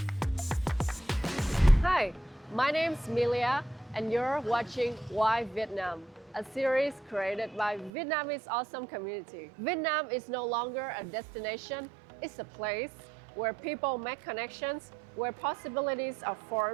Hi, my name's Milia, and you're watching Why Vietnam, a series created by Vietnamese awesome community. Vietnam is no longer a destination, it's a place where people make connections, where possibilities are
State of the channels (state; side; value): drops out; left; at 7.9 s